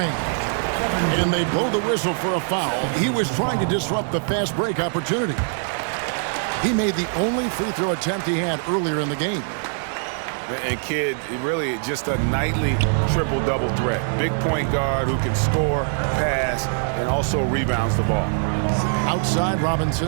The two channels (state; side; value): silent; left; 64 dB below the other